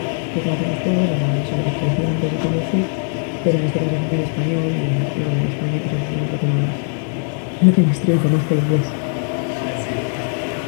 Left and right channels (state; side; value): silent; right; 56 dB below the other